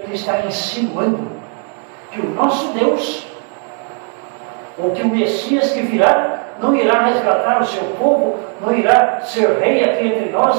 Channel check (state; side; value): quieter; left; 38.3 dB